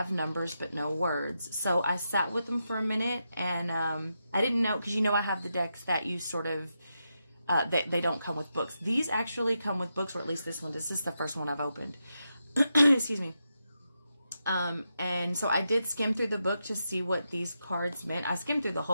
numbers, but no words. So I sat with them for a minute, and I didn't know, because you know I have the decks that you sort of, they don't come with books. These actually come with books, or at least this one. This is the first one I've opened. Excuse me. And so I did skim through the book to see what these cards meant. I skimmed through the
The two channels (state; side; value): inverted; both; correlation -0.86